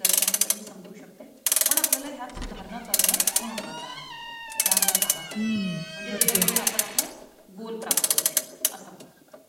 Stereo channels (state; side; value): identical; both; correlation 1.00